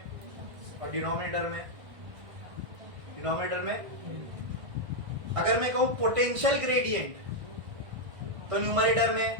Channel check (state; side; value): late; left; 1.6 ms